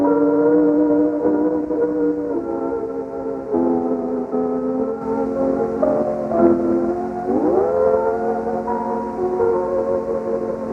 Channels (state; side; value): identical; both; correlation 1.00